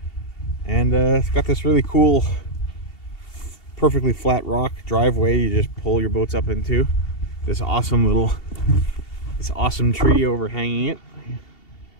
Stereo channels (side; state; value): right; late; 2.7 ms